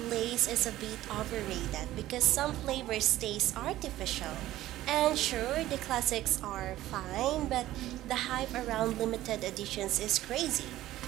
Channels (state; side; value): quieter; left; 14.9 dB